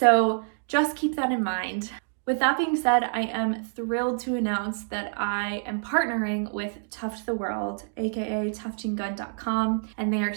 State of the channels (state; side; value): silent; left; digital silence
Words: just keep that in mind. With that being said, I am thrilled to announce that I am partnering with Tuft the World, aka tuftinggun.com, and they are